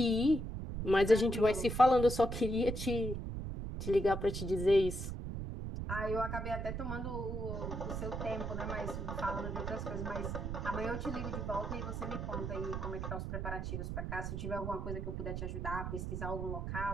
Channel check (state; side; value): noise; right; rumble, 4 dB below the sound